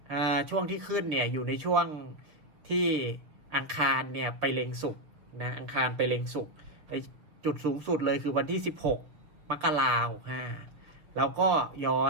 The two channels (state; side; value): late; left; 6.3 ms